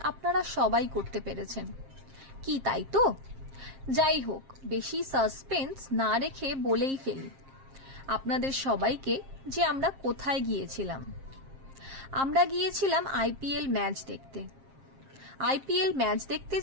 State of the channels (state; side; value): late; left; 7.5 ms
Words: আপনারা সবাই করতে পেরেছেন। কি তাই তো? যাই হোক, বেশি সাসপেন্স না রেখে বলেই ফেলি আপনাদের সবাইকে যে আমরা কোথায় গিয়েছিলাম। আমরা গিয়েছিলাম আইপিএল ম্যাচ দেখতে। আইপিএল ম্যাচ দেখতে